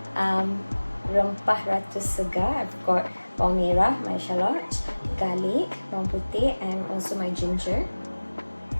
rempah ratu segar. I've got bawang merah, my shallots, garlic, bawang putih, and also my ginger.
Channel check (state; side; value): inverted; both; correlation -1.00